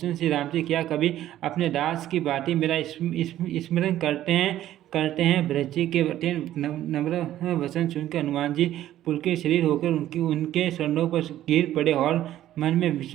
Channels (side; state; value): left; quieter; 13.0 dB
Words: श्री राम जी क्या कभी अपने दास की भांति मेरा स्मरण करते हैं। ब्रज जी के अत्यंत नम्र वचन सुनकर हनुमान जी पुलकित शरीर होकर उनके चरणों पर गिर पड़े और मन में